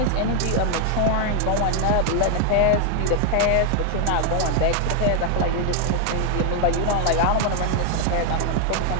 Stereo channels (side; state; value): both; different; correlation 0.00